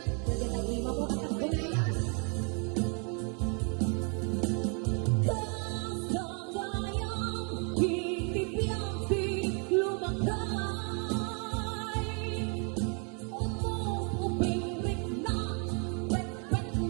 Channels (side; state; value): left; quieter; 37.1 dB